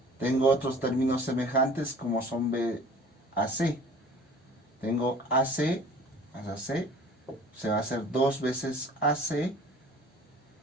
Tengo otros términos semejantes como son BAC. Tengo AC más AC, se va a hacer 2 veces AC.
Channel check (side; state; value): both; normal; correlation 0.46